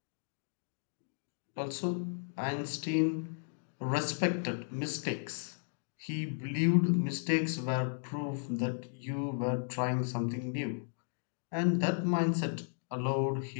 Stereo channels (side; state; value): right; silent; digital silence